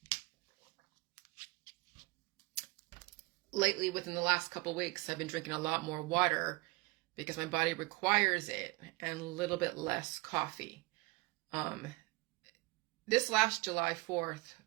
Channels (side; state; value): left; quieter; 23.7 dB